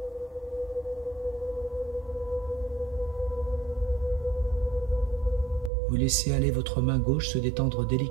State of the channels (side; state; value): left; drops out; at 5.7 s